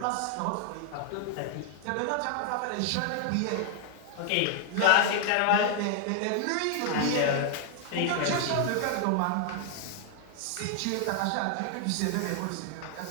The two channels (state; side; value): different; both; correlation 0.00